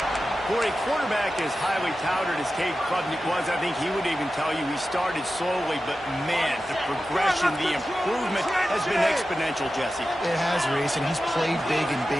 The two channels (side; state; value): both; normal; correlation 0.93